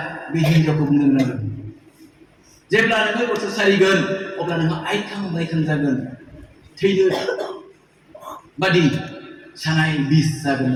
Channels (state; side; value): identical; both; correlation 1.00